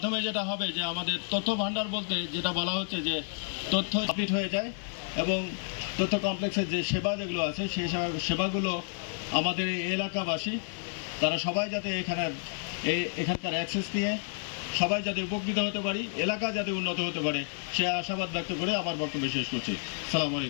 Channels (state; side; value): silent; right; digital silence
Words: যেটা হবে যে আমাদের তথ্য ভাণ্ডার বলতে যেটা বলা হচ্ছে যে তথ্য আপডেট হয়ে যায় এবং তথ্য কমপ্লেক্সের যে সেবা যেগুলো আছে সেই সেবাগুলো আমাদের এই এলাকাবাসী তারা সবাই যাতে এখানকার অ্যাক্সেস নিয়ে সবাই যাতে উপকৃত হতে পারি, এলাকা যাতে উন্নত হতে পারে, সে আশাবাদ ব্যক্ত করে আমার বক্তব্য শেষ করছি। আসসালামু